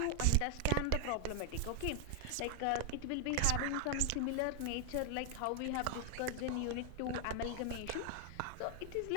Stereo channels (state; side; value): different; both; correlation 0.00